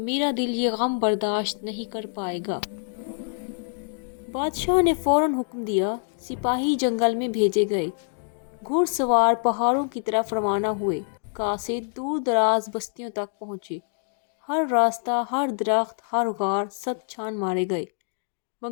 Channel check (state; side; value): silent; right; digital silence